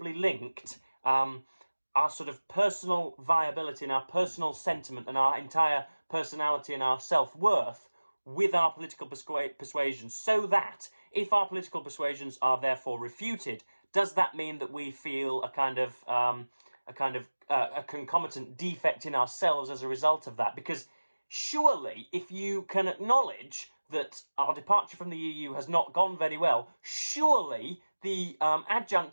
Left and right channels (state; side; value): inverted; both; correlation -1.00